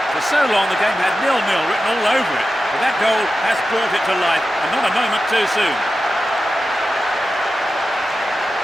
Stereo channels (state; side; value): normal; both; correlation 0.92